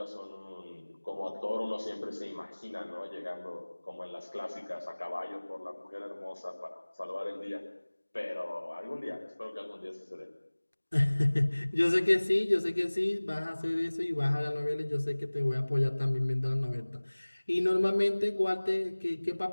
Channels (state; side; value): inverted; both; correlation -1.00